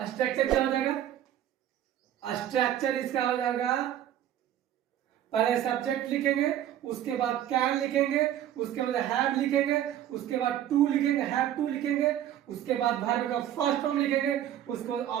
स्ट्रक्चर क्या हो जाएगा? स्ट्रक्चर इसका हो जाएगा, पहले सब्जेक्ट लिखेंगे, उसके बाद कैन लिखेंगे, उसके बाद हैव लिखेंगे, उसके बाद टू लिखेंगे, हैव टू लिखेंगे, उसके बाद वर्ब का फर्स्ट फॉर्म लिखेंगे, उसके बाद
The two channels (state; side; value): quieter; left; 11.4 dB